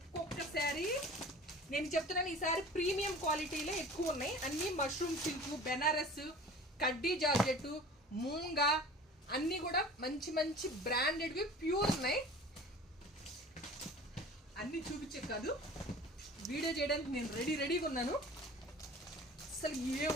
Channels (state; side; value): normal; both; correlation 0.42